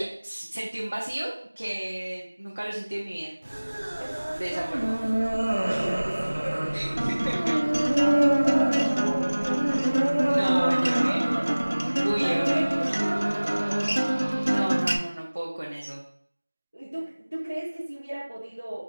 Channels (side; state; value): both; inverted; correlation -1.00